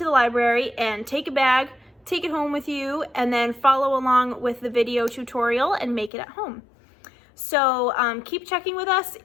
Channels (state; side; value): drops out; right; at 6.1 s